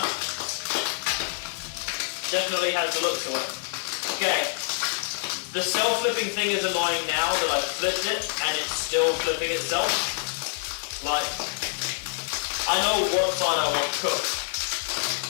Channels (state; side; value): silent; right; digital silence